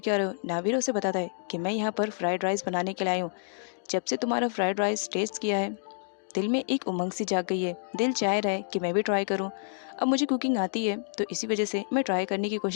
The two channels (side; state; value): right; silent; digital silence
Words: रहे हो। नावीरो उसे बताता है कि मैं यहाँ पर फ्राइड राइस बनाने के लिए आई हूँ। जब से तुम्हारा फ्राइड राइस टेस्ट किया है दिल में एक उमंग सी जाग गई है, दिल चाह रहा है कि मैं भी ट्राई करूं। अब मुझे कुकिंग आती है तो इसी वजह से मैं ट्राई करने की